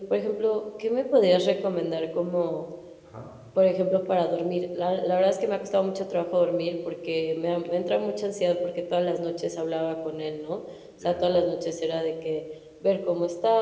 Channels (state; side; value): identical; both; correlation 1.00